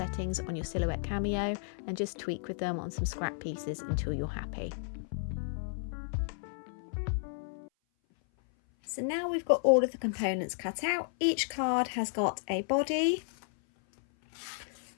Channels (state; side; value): silent; right; 56 dB below the other